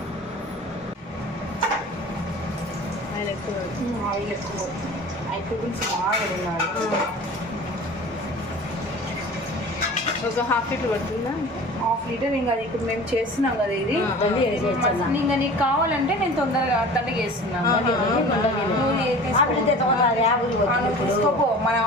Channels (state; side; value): normal; both; correlation 0.40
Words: ఆయిల్ ఎక్కువ ఆయిల్ ఎక్కువ ఐటమ్స్ బాగా ఉన్నాడు. ఒక ½ లీటర్ పడుతుందా? ½ లీటర్. ఇంకా అది ఇప్పుడు మేము చేస్తున్నాం కదా, ఇది ఇంకా నీకు కావాలంటే నేను తొందరగా అట్టండి చేస్తున్నాను. తీసుకోపో, మన